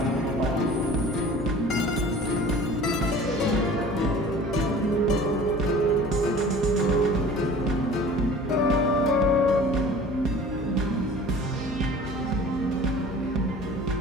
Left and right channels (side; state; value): both; normal; correlation 0.44